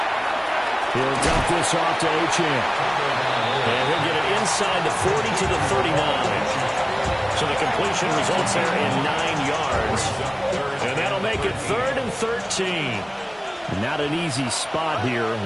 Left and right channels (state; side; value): identical; both; correlation 1.00